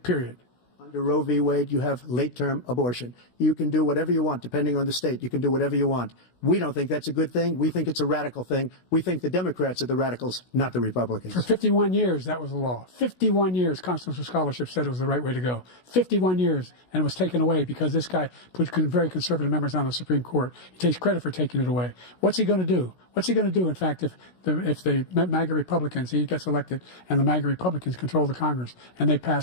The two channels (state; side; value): late; right; 16 ms